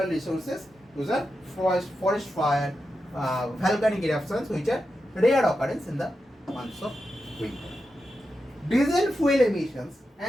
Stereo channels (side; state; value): both; normal; correlation 0.89